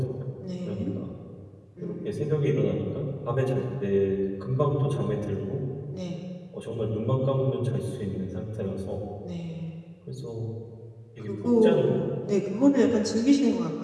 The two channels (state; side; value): identical; both; correlation 1.00